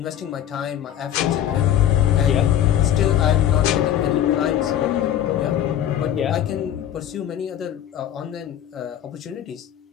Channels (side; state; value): right; quieter; 11.0 dB